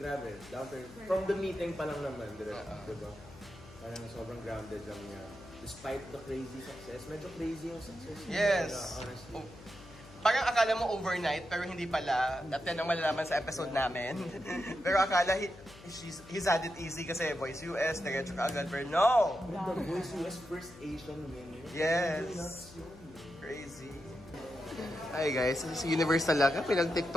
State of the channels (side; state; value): left; noise; hum, 20 dB below the sound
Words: Down to, from the meeting pa lang naman, diba? Parang sobrang grounded lang niya. Despite the crazy success, medyo crazy yung success niya. Yes. Honestly. Parang akala mo overnight, pero hindi pala. At yan ang malalaman sa episode namin. Pero akala he's had it easy kasi Voice US, diretso ka agad. Pero no! The Voice US first Asian winner. Yes. Crazy. Hi guys, this is Universe talaga.